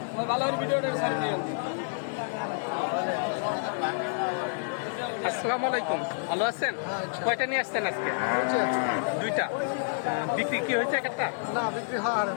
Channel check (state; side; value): silent; right; digital silence